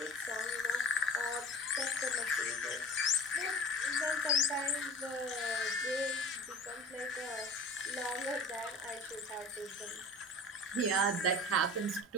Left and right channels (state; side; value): normal; both; correlation 0.39